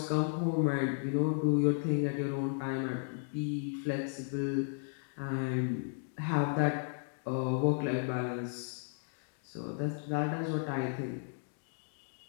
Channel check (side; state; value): right; silent; digital silence